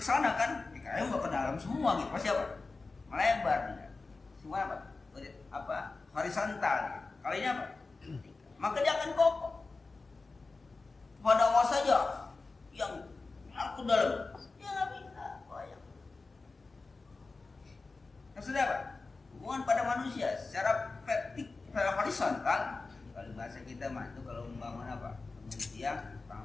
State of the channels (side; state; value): right; quieter; 3.8 dB